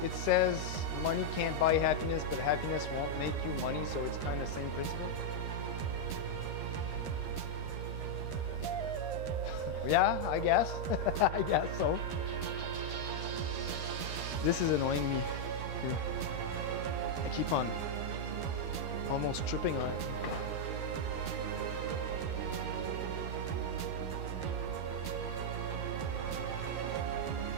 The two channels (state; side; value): late; right; 13 ms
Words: says money can't buy happiness, but happiness won't make you money, so it's kind of the same principle? Yeah, I guess. I guess so. This is annoying me here. I keep on almost tripping on it.